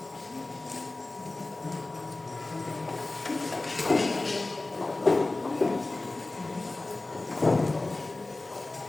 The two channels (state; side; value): quieter; right; 3.1 dB